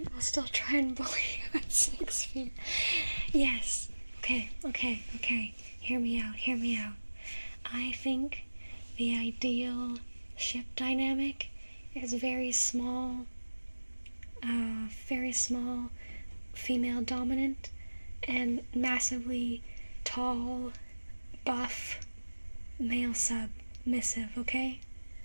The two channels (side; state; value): both; inverted; correlation -1.00